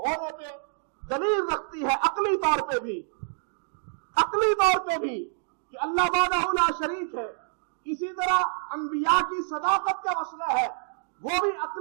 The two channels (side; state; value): left; silent; digital silence